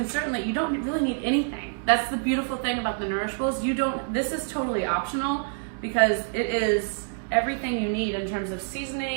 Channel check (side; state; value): left; silent; digital silence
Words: you don't really need anything. That's the beautiful thing about the Nourish Bowls. This is totally optional because it is everything you need in terms of